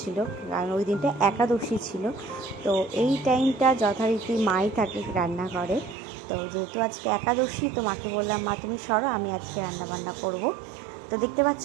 কারণ ওই দিনটা একাদশী ছিল। তো এই টাইমটা যথারীতি মাই থাকে রান্না করে। তো যেহেতু আজকে একাদশী, তো মাকে বললাম, মা তুমি সরো, আমি আজকে রান্না বান্না করব। তো দেখতে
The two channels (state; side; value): drops out; left; at 6.0 s